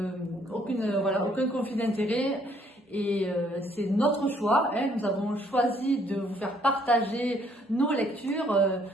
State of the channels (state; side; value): normal; both; correlation 0.65